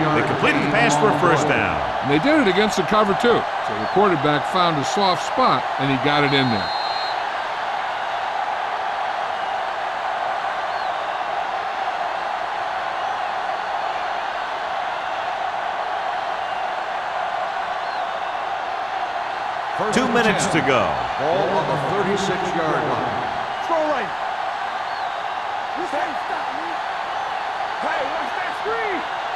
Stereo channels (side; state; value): both; identical; correlation 1.00